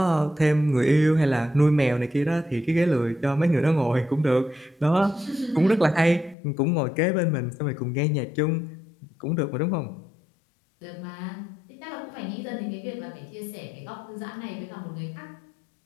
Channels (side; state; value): right; drops out; at 6.4 s